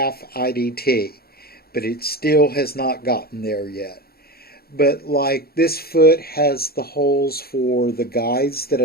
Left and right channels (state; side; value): late; right; 0.45 ms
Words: IDT, but it still has not gotten there yet. But like this foot has the holes for the guides that